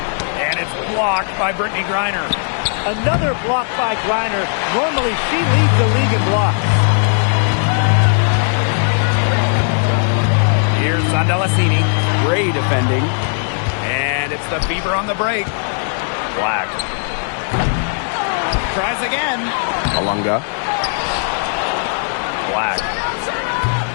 And it's blocked by Brittany Griner. Another block by Griner. Normally, she leads the league in blocks. Here's Andalassini. Gray defending. And it's the Fever on the break. Black. Tries again. Alunga. Black.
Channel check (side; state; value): right; silent; digital silence